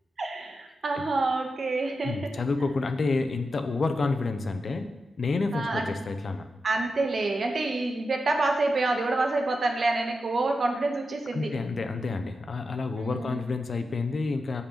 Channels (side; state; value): both; normal; correlation 0.88